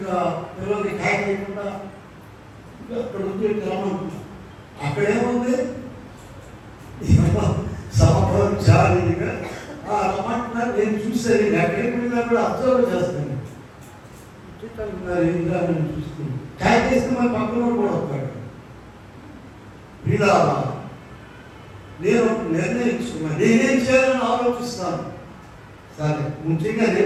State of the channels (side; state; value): both; identical; correlation 1.00